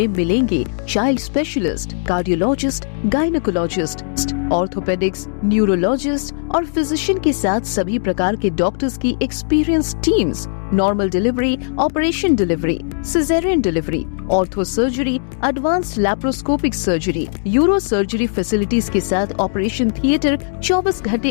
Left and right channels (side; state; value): right; silent; digital silence